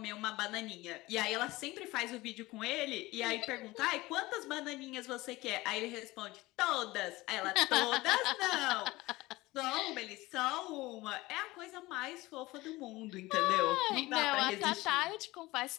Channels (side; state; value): right; quieter; 19.9 dB